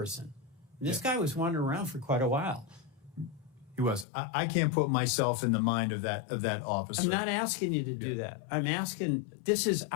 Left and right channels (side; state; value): right; drops out; at 4.0 s